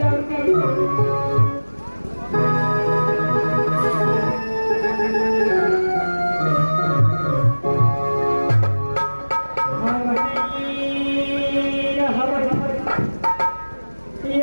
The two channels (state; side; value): inverted; both; correlation -1.00